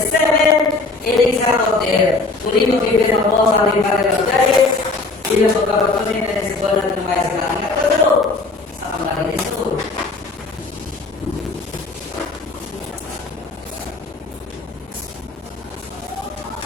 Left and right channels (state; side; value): quieter; right; 3.5 dB